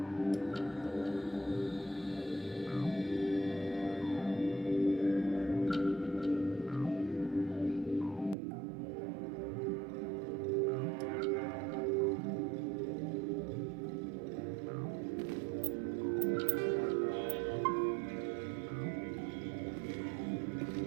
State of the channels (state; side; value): drops out; left; at 8.3 s